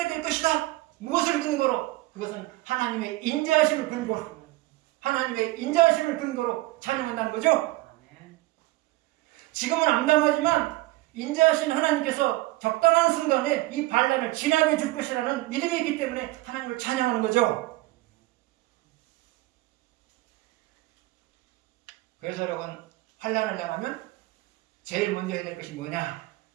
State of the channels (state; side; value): quieter; left; 19.3 dB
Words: 될 것이다. 무엇을 근거로? 그것은 하나님의 인자하심을 근거로, 하나님의 인자하심을 근거로 찬양한다는 거죠. 지금은 암담하지만 인자하신 하나님께서 적당한 순간에 이 반란을 지나게 줄 것이라는 믿음이 있기 때문에 하나님을 찬양하는 거죠. 그래서 여러분, 환난을 당하면 제일 먼저 해야 될 것이 뭐냐?